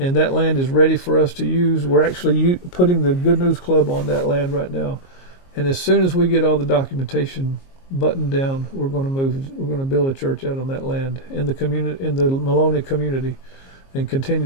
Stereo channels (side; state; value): right; late; 22 ms